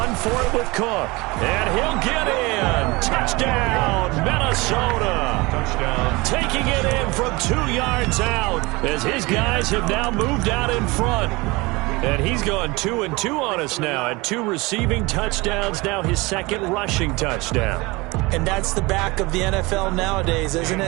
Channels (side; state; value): left; quieter; 23.8 dB